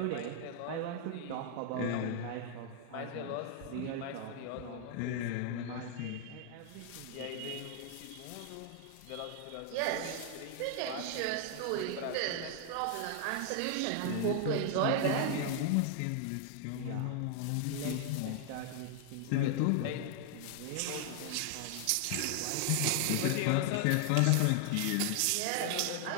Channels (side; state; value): both; different; correlation 0.00